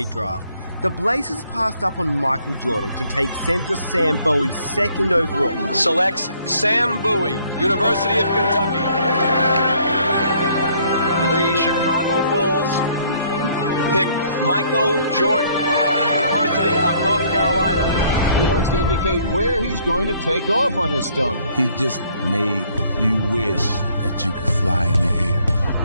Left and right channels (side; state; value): both; inverted; correlation -0.64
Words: draft, the Blazers passed up on Michael Jordan to take center Sam Bowie second overall. Selects Sam Bowie, University of Kentucky. The Chicago Bulls pick Michael Jordan, University of North Carolina. He wants to indicate where he's going to take off on this dunk. He just made you wish that you could fly in the air.